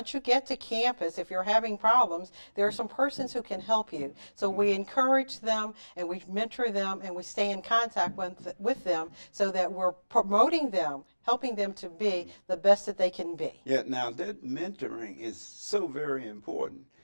you get to campus, if you're having problems, there are some persons who can help you. So we encourage them and we mentor them and we stay in contact with them so that we're promoting them, helping them to be the best that they can be. Yeah, now that mentoring is so very important.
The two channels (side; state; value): both; inverted; correlation -1.00